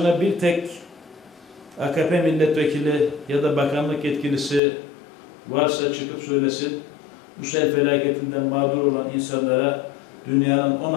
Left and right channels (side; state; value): right; drops out; at 4.6 s